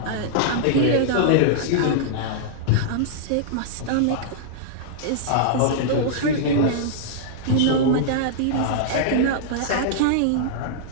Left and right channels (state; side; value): different; both; correlation -0.02